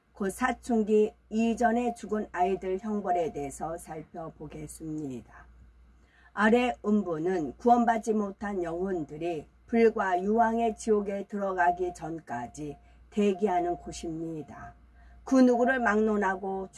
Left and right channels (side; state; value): both; identical; correlation 1.00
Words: 곧 사춘기 이전에 죽은 아이들 형벌에 대해서 살펴보겠습니다. 아래 음부는 구원받지 못한 영혼들이 불과 유황의 지옥에 들어가기 전까지 대기하는 곳입니다. 그 누구를 막론하고